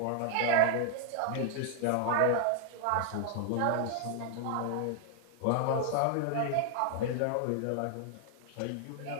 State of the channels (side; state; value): both; different; correlation 0.00